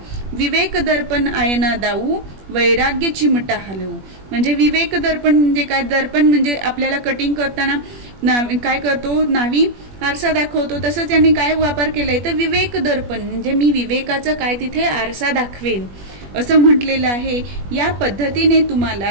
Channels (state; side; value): late; left; 21 ms